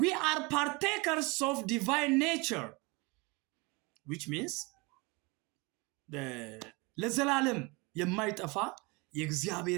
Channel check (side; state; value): left; quieter; 27.1 dB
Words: are partakers of divine nature which means ለዘላለም የማይጠፋ